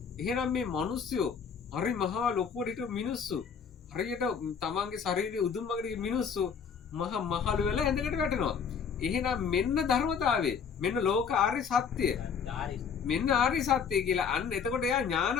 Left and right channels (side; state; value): right; quieter; 6.6 dB